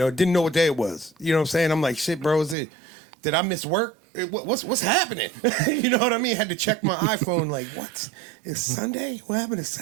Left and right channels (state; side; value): drops out; left; at 2.6 s